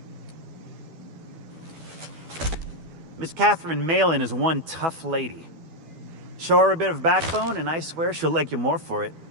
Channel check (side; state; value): left; late; 12 ms